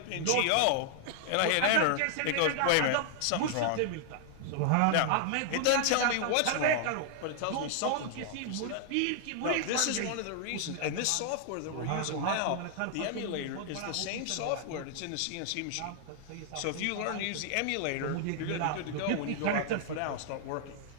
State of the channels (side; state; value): both; different; correlation 0.00